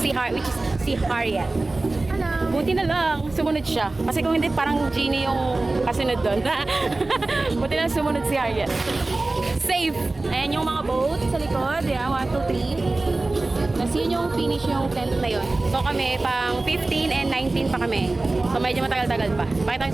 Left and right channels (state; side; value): quieter; left; 3.1 dB